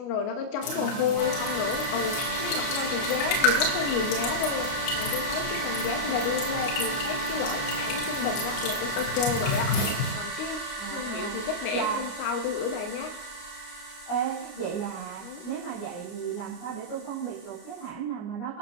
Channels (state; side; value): late; right; 29 ms